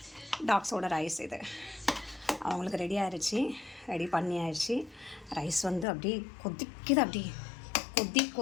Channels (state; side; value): drops out; right; at 5.9 s